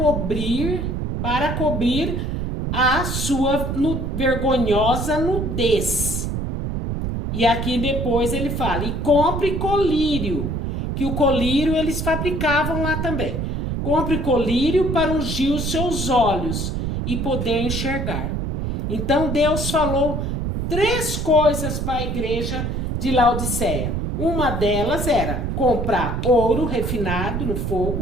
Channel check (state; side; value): noise; right; rumble, 2 dB below the sound